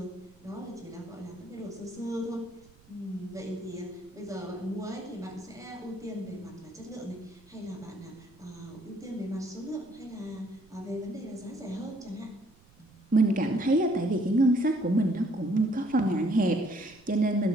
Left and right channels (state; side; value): noise; right; rumble, 27 dB below the sound